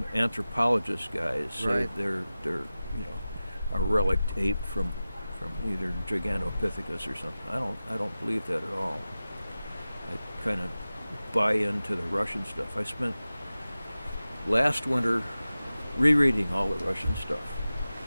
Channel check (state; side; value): inverted; both; correlation -0.96